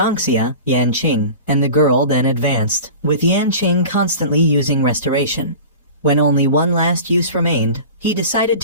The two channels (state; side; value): inverted; both; correlation -0.36